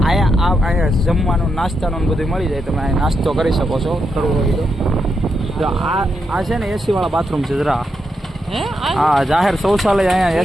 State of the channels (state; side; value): normal; both; correlation 0.83